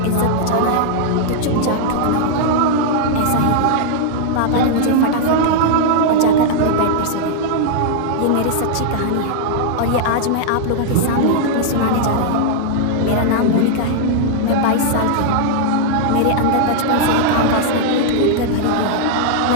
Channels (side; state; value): both; different; correlation -0.01